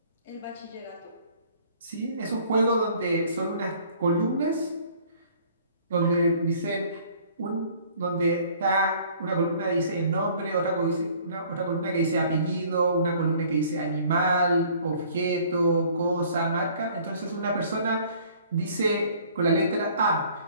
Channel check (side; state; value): both; inverted; correlation -0.55